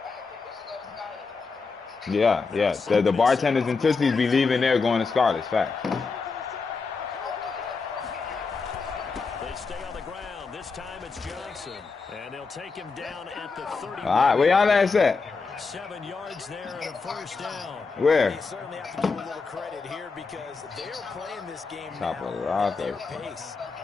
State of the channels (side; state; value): right; quieter; 4.6 dB